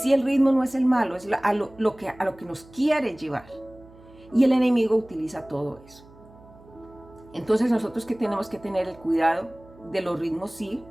el ritmo no es el malo, es a lo que nos quiere llevar, y el enemigo utiliza todo eso. Entonces nosotros que tenemos que tener el cuidado de los ritmos. Sí,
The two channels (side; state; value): right; noise; hum, 24 dB below the sound